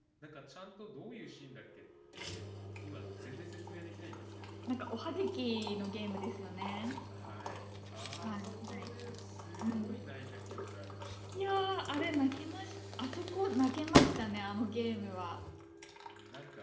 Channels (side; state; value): both; identical; correlation 1.00